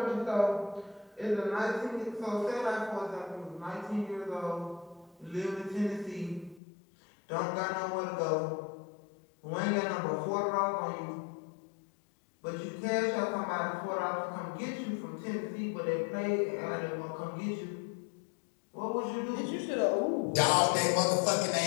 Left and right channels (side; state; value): right; drops out; at 6.6 s